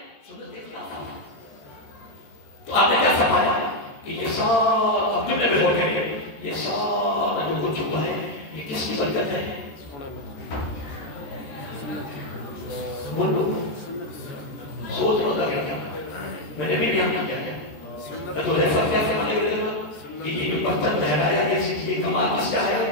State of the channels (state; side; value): late; right; 14 ms